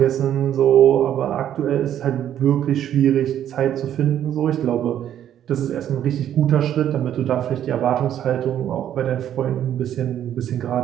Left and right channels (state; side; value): quieter; left; 10.6 dB